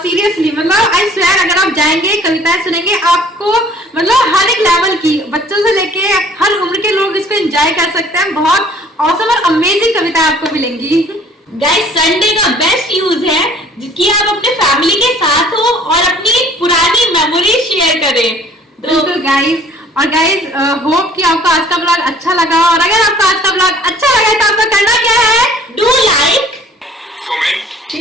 सीरियसली मतलब आई स्वेयर, अगर आप जाएंगे कविताएं सुनेंगे, आपको मतलब हर एक लेवल की, बच्चों से लेके हर उम्र के लोग इसको एंजॉय कर सकते हैं। बहुत ऑसम और अमेजिंग कविताएं आपको मिलेंगी। गाइस संडे का बेस्ट यूज है कि आप अपने फैमिली के साथ हो और अपनी पुरानी मेमोरी शेयर करें। तो बिल्कुल गाइस, और गाइस होप कि आपको आज का ब्लॉग अच्छा लगा, और अगर आपको आज का ब्लॉग अच्छा लगा तो आपको करना क्या है? Do like,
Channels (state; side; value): normal; both; correlation 0.54